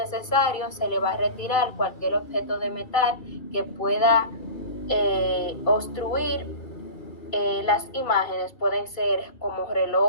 se le va a retirar cualquier objeto de metal que pueda obstruir las imágenes. Pueden ser como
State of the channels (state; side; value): late; right; 2.5 ms